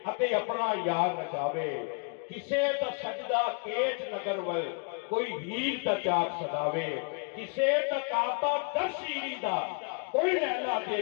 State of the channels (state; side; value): quieter; right; 37.3 dB